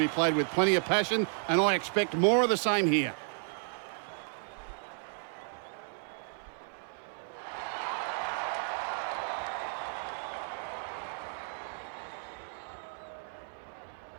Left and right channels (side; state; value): left; silent; 56 dB below the other